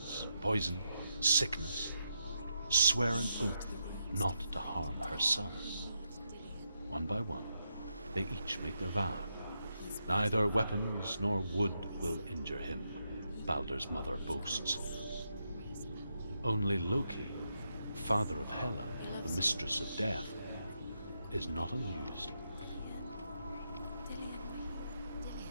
poison, sickness, swear an oath not to harm her son. One by one, they each make their vow. Neither weapons nor wood will injure him, Balder's mother boasts. Only Loki, father of Hela, the mistress of death, is not amused.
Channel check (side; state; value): both; inverted; correlation -0.82